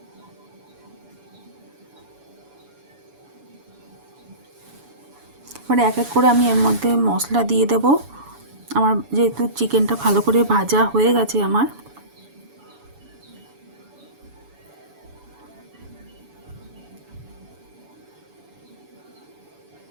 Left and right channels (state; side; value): late; left; 7.1 ms